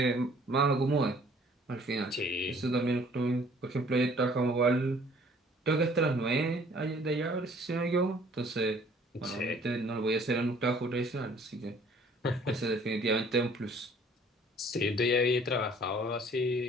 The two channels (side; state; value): both; normal; correlation 0.56